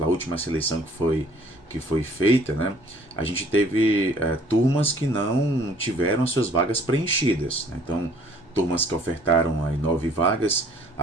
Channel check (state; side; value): normal; both; correlation 0.57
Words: a última seleção que foi feita, né, a gente teve turmas que não tiveram as suas vagas preenchidas, né? Então, turmas que ofertaram aí 9 vagas,